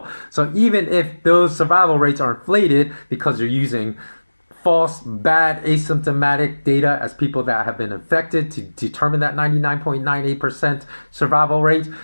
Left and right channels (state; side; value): inverted; both; correlation -1.00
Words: So even if those survival rates are inflated because you're using false, bad, asymptomatic data as people that have been infected to determine that 99.98% survival rate,